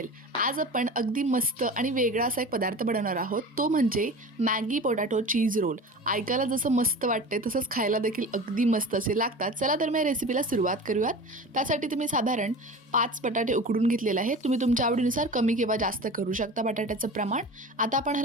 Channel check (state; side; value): normal; both; correlation 0.35